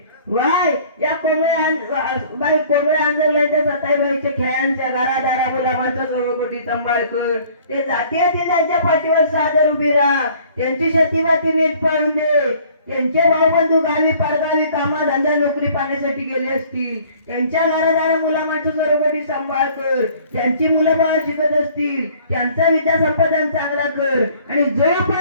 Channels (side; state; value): both; inverted; correlation -0.54